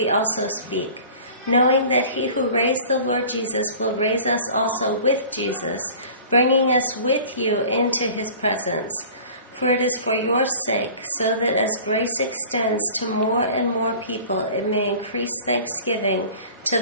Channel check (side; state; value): both; inverted; correlation -0.44